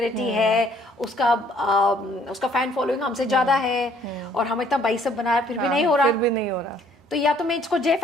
है, उसका फैन फॉलोइंग हमसे ज्यादा है और हम इतना बाइसेप बना रहे फिर भी नहीं हो रहा, फिर भी नहीं हो रहा। तो या तो मैं इसको जे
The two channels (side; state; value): both; normal; correlation 0.62